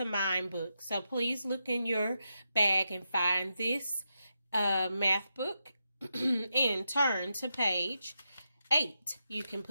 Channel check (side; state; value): both; inverted; correlation -0.85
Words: Mind book. So please look in your bag and find this math book and turn to page 8. You can